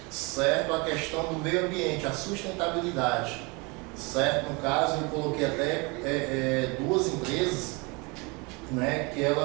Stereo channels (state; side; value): quieter; left; 28.4 dB